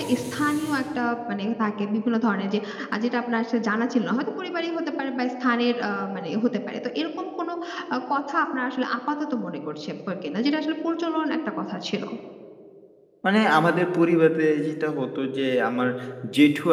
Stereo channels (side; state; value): both; identical; correlation 1.00